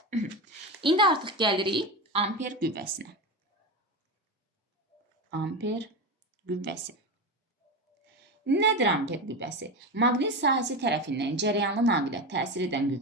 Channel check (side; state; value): both; normal; correlation 0.20